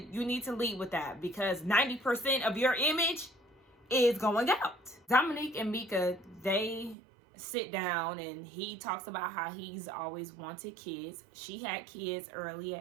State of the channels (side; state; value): left; drops out; at 7.0 s